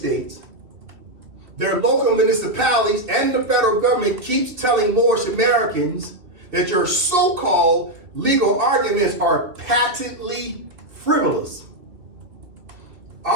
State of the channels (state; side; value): late; left; 2.7 ms